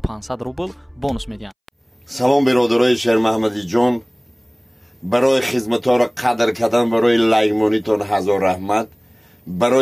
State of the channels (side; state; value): both; identical; correlation 1.00